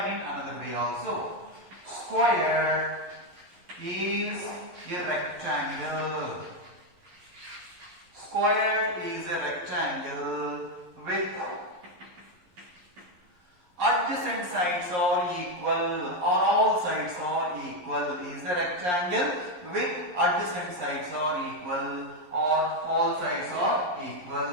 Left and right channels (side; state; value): left; late; 11 ms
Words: in another way also. Square is a rectangle. Square is a rectangle with adjacent sides are equal, or all sides are equal. Is a rectangle with adjacent sides are equal, or all sides are